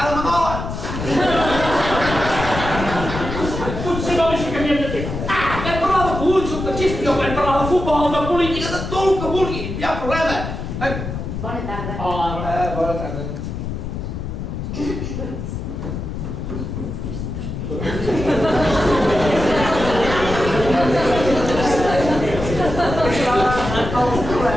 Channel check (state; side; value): noise; left; rumble, 6 dB below the sound